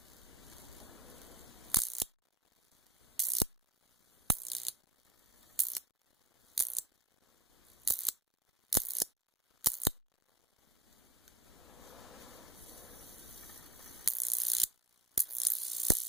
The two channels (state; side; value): normal; both; correlation 0.47